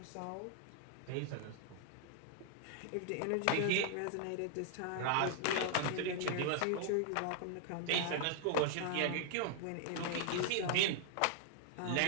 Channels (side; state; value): both; different; correlation 0.00